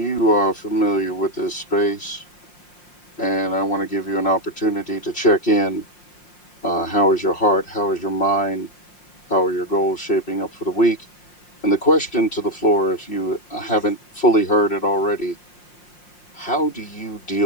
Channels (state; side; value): late; right; 5.6 ms